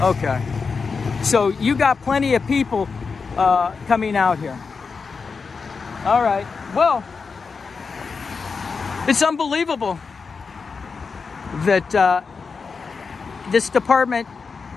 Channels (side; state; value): right; quieter; 5.0 dB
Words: Okay. So you got plenty of people coming out here. All right. Well, it's unbelievable that this department